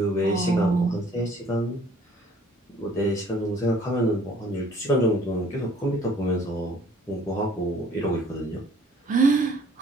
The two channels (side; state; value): both; normal; correlation 0.56